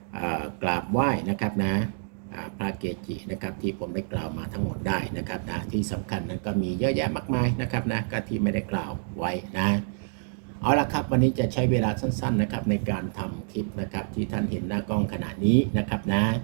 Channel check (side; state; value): left; silent; digital silence